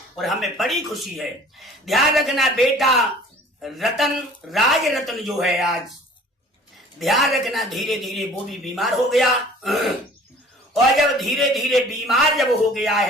और हमें बड़ी खुशी है। ध्यान रखना बेटा रतन, राज रतन जो है आज, ध्यान रखना धीरे धीरे वो भी बीमार हो गया। और जब धीरे धीरे बीमार जब हो गया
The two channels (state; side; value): normal; both; correlation 0.48